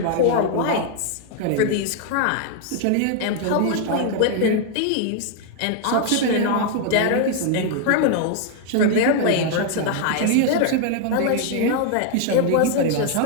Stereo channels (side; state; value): both; different; correlation 0.00